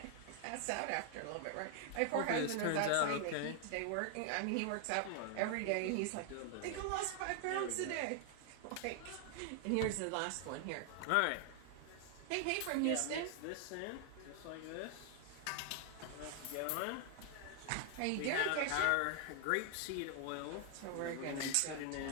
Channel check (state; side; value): different; both; correlation 0.00